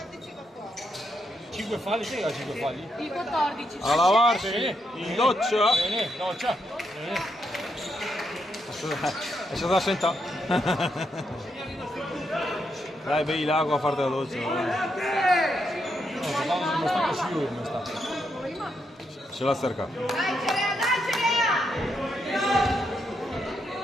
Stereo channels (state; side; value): normal; both; correlation 0.80